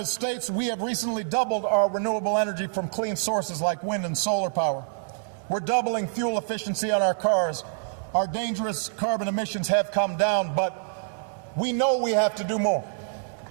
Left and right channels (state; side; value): silent; left; digital silence